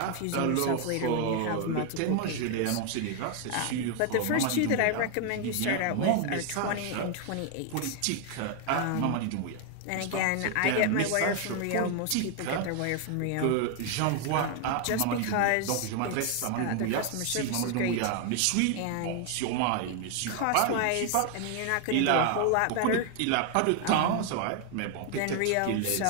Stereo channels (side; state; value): both; different; correlation 0.00